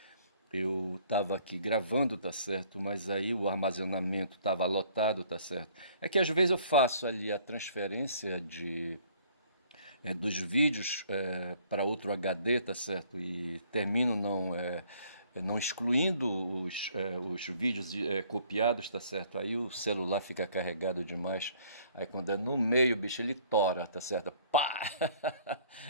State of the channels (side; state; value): both; inverted; correlation -0.59